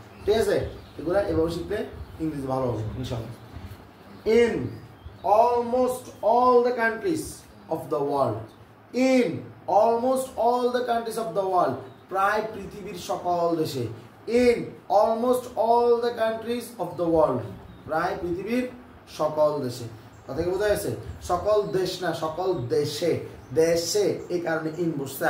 ঠিক আছে, এগুলো এভাবে শিখলে ইংরেজি ভালো হবে ইনশাআল্লাহ। In almost all the countries of the world, in almost all the countries of the world, প্রায় পৃথিবীর সকল দেশে, in almost all the countries of the world, প্রায় পৃথিবীর সকল দেশে। কথা কি বোঝা গেছে? সকল দেশ না, সকল দেশে, দেশে এই কারণে ইন বসছে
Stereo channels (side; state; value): both; identical; correlation 1.00